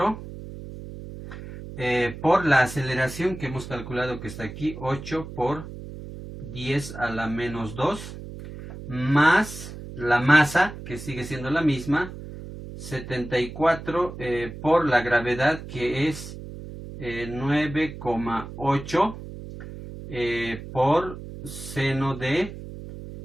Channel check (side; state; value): right; noise; hum, 12 dB below the sound